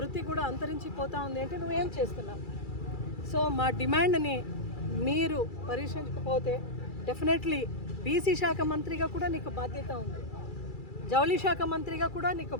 కూడా అంతరించిపోతూ ఉంది అంటే నువ్వేం చేస్తున్నావు? సో మా డిమాండ్ని మీరు పరిశీలించకపోతే డెఫినెట్లీ బీసీ శాఖ మంత్రిగా కూడా నీకు బాధ్యత ఉంది, జౌళి శాఖ మంత్రిగా కూడా నీకు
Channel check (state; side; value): late; right; 2.3 ms